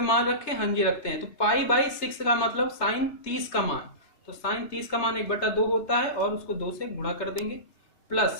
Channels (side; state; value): right; late; 3.2 ms